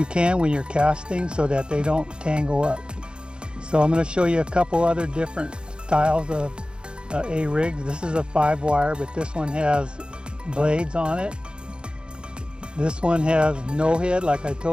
can when you're casting so that they don't tangle up. So I'm going to show you a couple other different styles of A-rigs. This is a 5-wire, but this one has blades on it. This one has no head, like I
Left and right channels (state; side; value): late; left; 0.052 ms